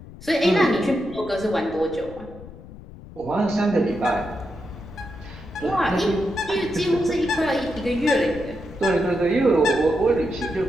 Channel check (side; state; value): left; noise; rumble, 17 dB below the sound